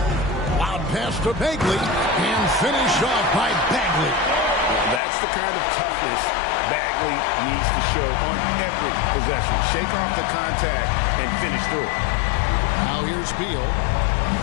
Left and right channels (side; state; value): right; drops out; at 5.0 s